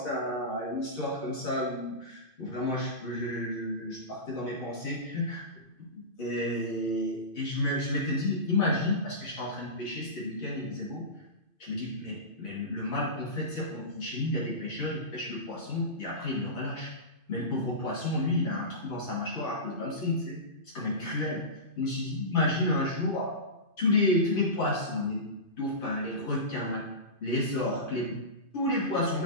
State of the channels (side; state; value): right; late; 2.5 ms